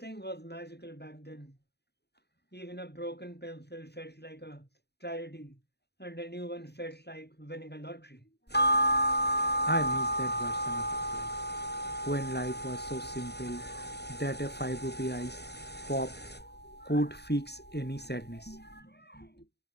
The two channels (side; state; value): right; late; 0.48 ms